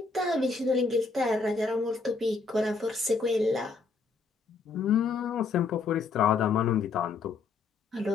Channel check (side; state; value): right; quieter; 4.4 dB